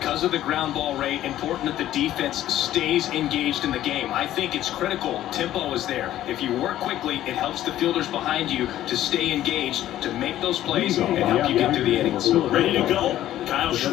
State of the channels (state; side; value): quieter; right; 13.1 dB